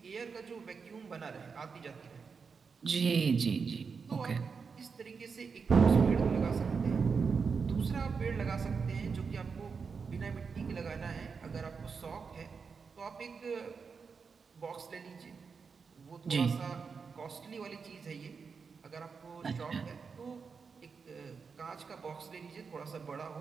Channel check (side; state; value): left; quieter; 5.5 dB